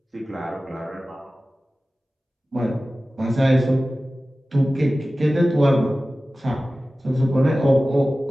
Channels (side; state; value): both; normal; correlation 0.96